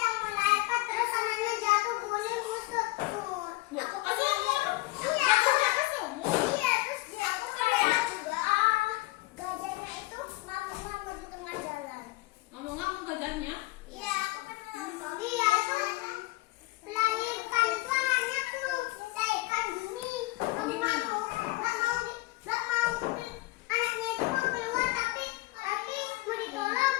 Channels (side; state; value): right; quieter; 21.0 dB